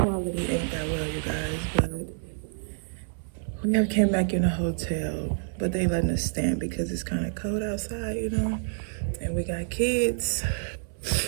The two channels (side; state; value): left; silent; 59 dB below the other